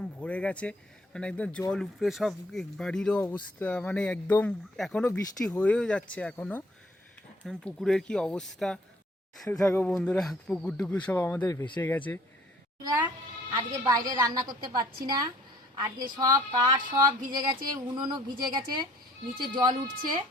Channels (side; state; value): both; normal; correlation 0.58